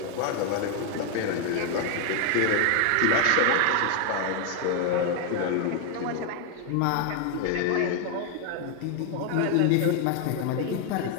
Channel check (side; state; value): both; different; correlation 0.01